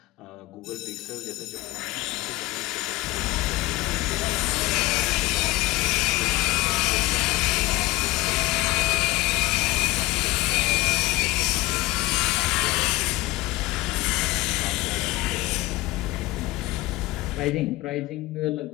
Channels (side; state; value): right; quieter; 20.1 dB